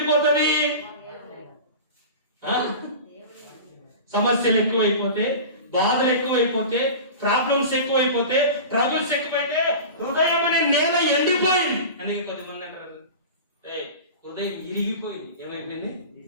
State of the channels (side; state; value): both; inverted; correlation -0.33